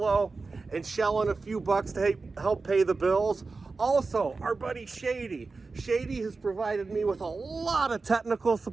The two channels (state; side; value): quieter; left; 4.0 dB